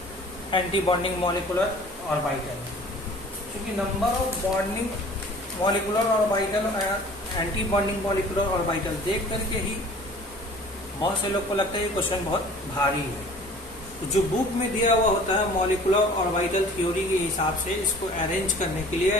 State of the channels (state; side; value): normal; both; correlation 0.47